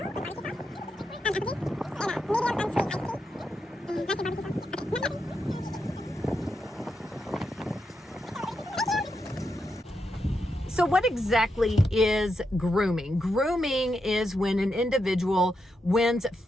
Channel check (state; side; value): normal; both; correlation 0.84